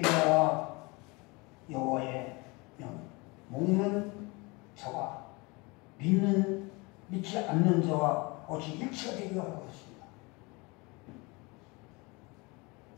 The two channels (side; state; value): right; quieter; 26.4 dB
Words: 여호와의 명, 먹는 자와 믿지 않는 자와 어찌 일치가 되기가 하고 있습니다.